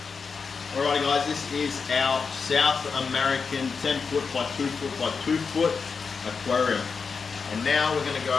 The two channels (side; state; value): right; quieter; 5.3 dB